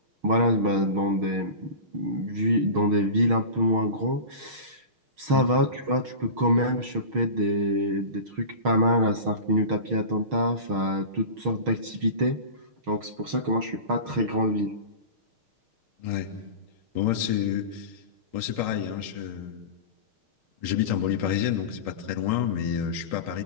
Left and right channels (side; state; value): left; late; 6.4 ms